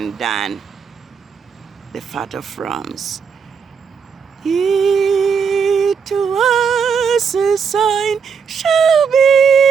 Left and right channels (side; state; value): left; quieter; 6.3 dB